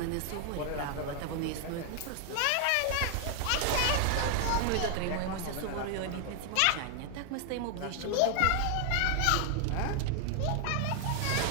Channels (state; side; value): different; both; correlation 0.00